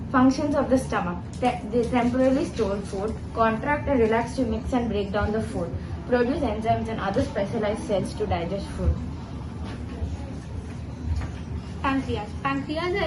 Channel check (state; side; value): identical; both; correlation 1.00